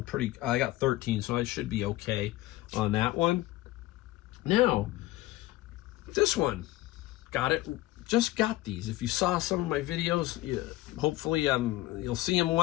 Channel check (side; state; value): right; quieter; 17.1 dB